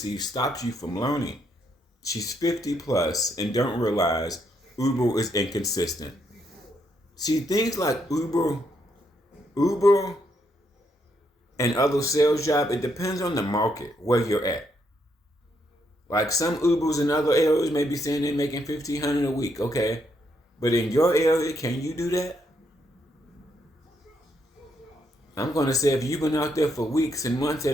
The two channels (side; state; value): both; normal; correlation 0.76